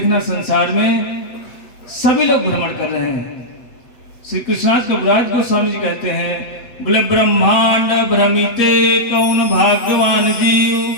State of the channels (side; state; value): right; late; 8.6 ms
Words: संसार में सभी लोग भ्रमण कर रहे हैं। श्री कृष्णाज कविराज गोस्वामी जी कहते हैं, बोले ब्रह्मांड भ्रमिते कौन भाग्यवान जीव,